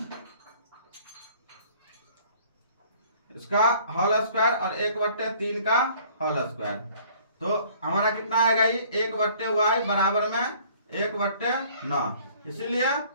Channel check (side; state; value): both; inverted; correlation -0.55